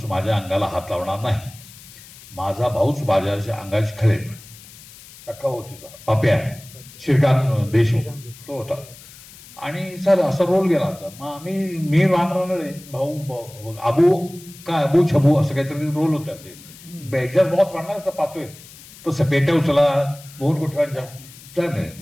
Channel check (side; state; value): left; noise; hiss, 20 dB below the sound